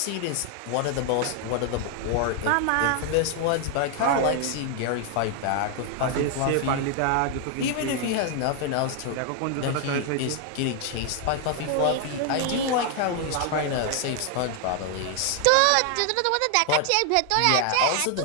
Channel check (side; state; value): both; different; correlation 0.00